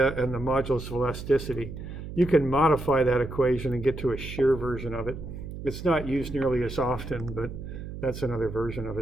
and the modulus of elasticity, you can modify that equation and get to a shear version of it. It's not used nearly as often, but that's another version of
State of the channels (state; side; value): noise; right; hum, 9 dB below the sound